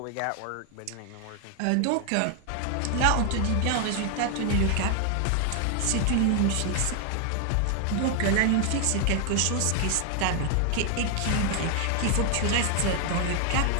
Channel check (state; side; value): different; both; correlation 0.00